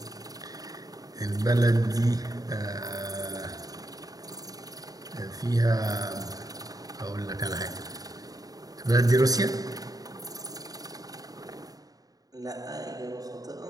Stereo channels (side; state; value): left; late; 0.18 ms